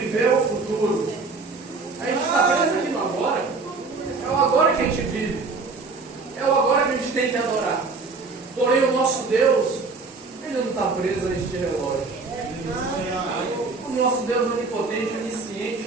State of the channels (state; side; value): quieter; left; 4.1 dB